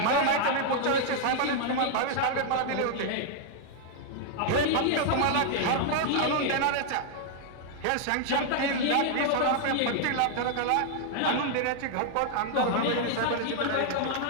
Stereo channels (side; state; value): both; different; correlation 0.00